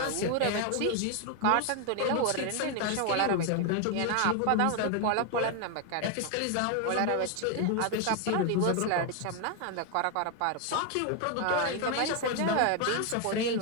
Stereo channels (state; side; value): different; both; correlation 0.01